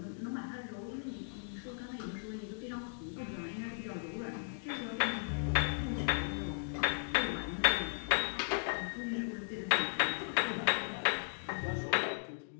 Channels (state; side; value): silent; right; digital silence